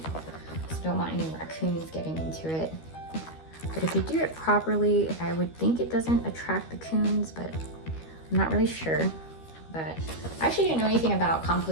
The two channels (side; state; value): right; late; 13 ms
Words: So don't want any raccoons getting into it. But if you do it properly, I would think it doesn't attract the coons, but I'm not really sure. But I actually didn't know anything about